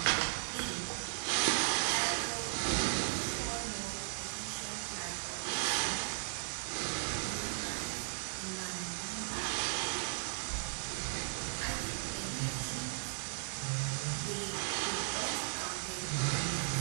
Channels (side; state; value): left; silent; digital silence